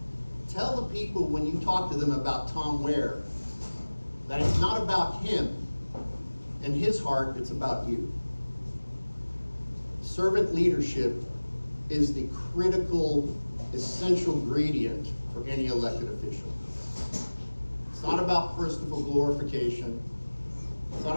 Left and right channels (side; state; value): both; inverted; correlation -1.00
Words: Tell the people when you talk to them about Tom Ware that it's not about him and his heart, it's about you. Servant leadership is the critical, essential ingredient for any elected official. It's not about personal glorification. It's not